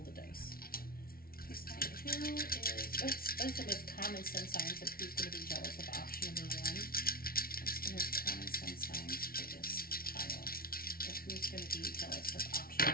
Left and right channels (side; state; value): right; late; 0.43 ms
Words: the dice. Please tell me who is, what's the most common sun signs of who's going to be jealous of option number 1? What's the most common sun signs for this tile of who's going to be jealous of option